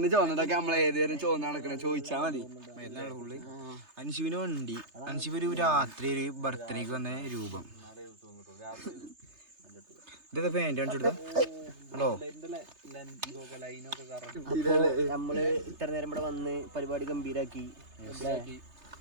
ചോന്നതൊക്കെ നമ്മളെ ഏതുവരും ചോന്ന നടക്കണ ചോദിച്ചാ മതി. അൻഷുവിന് വണ്ടി. അൻഷുവ് ഒരു രാത്രി ഒരു ബർത്ത്ഡേക്ക് വന്ന രൂപം. ഇതൊക്കെ പാൻറ് കാണിച്ചു ഹലോ. നമ്മള് ഇത്ര നേരം ഇവിടെ വന്ന് പരിപാടി ഗംഭീരാക്കി.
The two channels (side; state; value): left; late; 3.3 ms